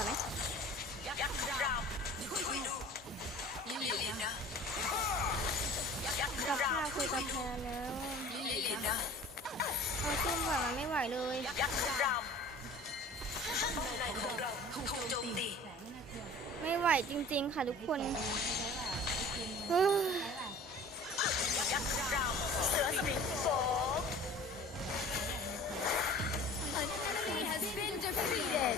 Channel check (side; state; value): both; normal; correlation 0.43